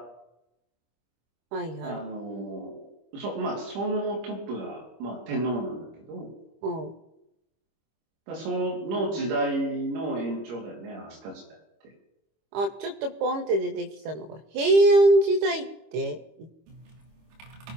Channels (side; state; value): left; late; 25 ms